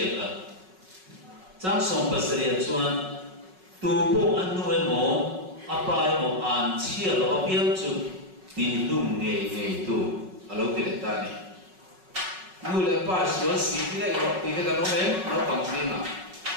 cả trang sôm pasria chuan tu bộ ăn nuôi mồ apa mồ ăn chia lo biếng chú tin lung nghề tu alo cái này ta này nuôi lại ba số xí cái này rồi thì cái nó mềm nó bằng gì mà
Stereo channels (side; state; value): left; late; 5.4 ms